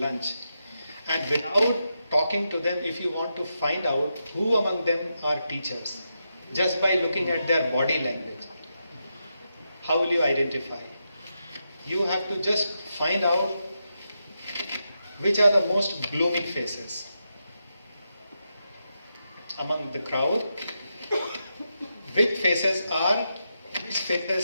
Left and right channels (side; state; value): both; inverted; correlation -0.86